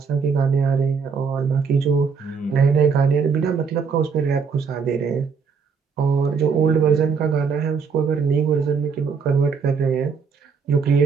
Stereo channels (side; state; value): left; quieter; 5.7 dB